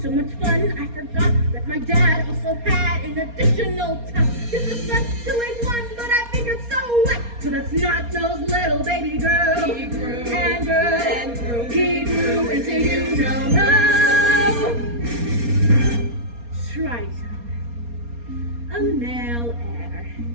much fun. I forgot that my dad also had an additional ton. This was left to like one, but I figured so what? So that's not those little baby girls. He grew And grew, and grew. he grew into you know Triton, a male heir.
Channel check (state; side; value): late; left; 4.2 ms